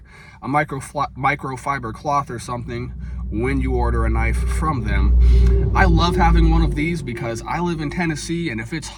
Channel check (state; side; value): identical; both; correlation 1.00